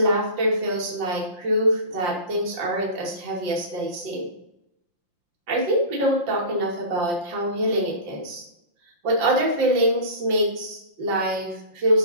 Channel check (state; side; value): late; left; 5.7 ms